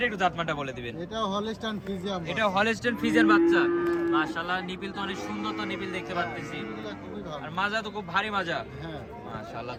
একটু জাতমানটা বলে দিবেন। এটা হলস্টাইন ফ্রিজিয়ান। এটা হলস্টাইন ফ্রিজিয়ান বাচ্চা। মাশাআল্লাহ, নিপিল তো অনেক সুন্দর, তো নিপিল দেখতে পাচ্ছি। আর মাজা তো খুব ভারী মাজা। হ্যাঁ মাশাআল্লাহ,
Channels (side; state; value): both; identical; correlation 1.00